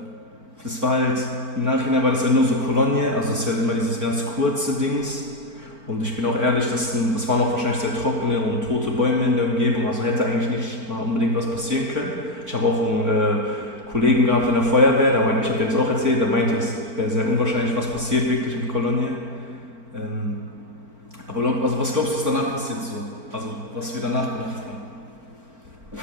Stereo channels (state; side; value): late; left; 4.4 ms